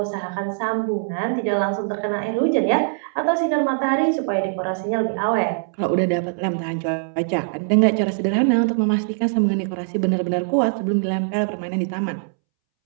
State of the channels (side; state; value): left; silent; 64 dB below the other